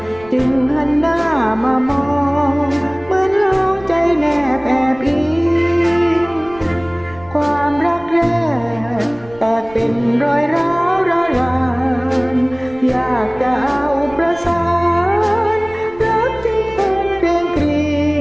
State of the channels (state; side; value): noise; right; rumble, 22 dB below the sound